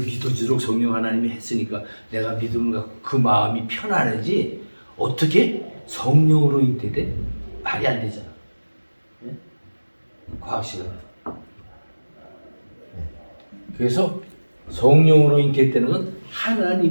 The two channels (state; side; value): inverted; both; correlation -1.00